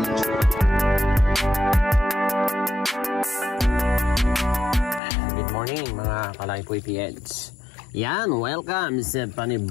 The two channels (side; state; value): right; drops out; at 5.0 s